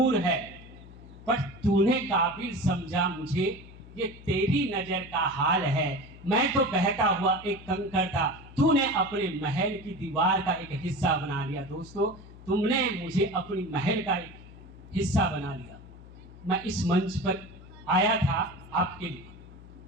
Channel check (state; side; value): noise; left; hum, 18 dB below the sound